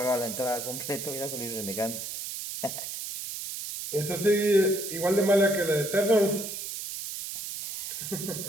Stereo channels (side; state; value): right; noise; hiss, 6 dB below the sound